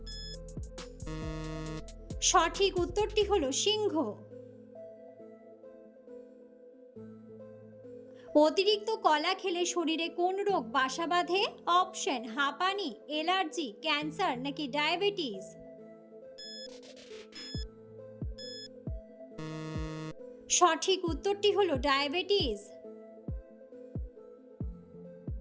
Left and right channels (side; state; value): both; identical; correlation 1.00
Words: সঠিক উত্তরটি হলো সিংহ। অতিরিক্ত কলা খেলে শরীরে কোন রোগ বাসা বাঁধে? অপশন হাঁপানি, অ্যালার্জি, ক্যান্সার নাকি ডায়াবেটিস। সঠিক উত্তরটি হলো ডায়াবেটিস।